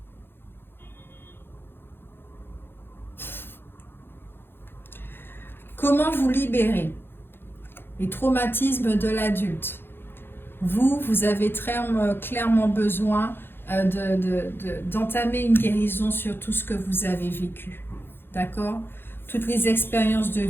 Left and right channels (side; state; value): right; late; 0.10 ms